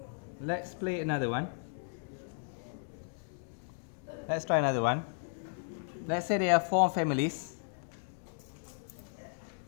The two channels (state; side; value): silent; right; digital silence